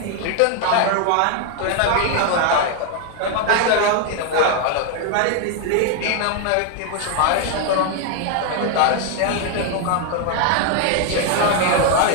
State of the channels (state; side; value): different; both; correlation 0.01